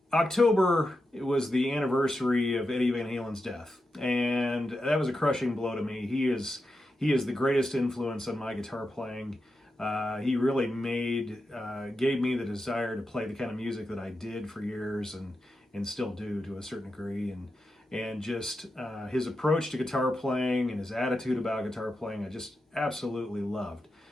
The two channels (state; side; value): normal; both; correlation 0.88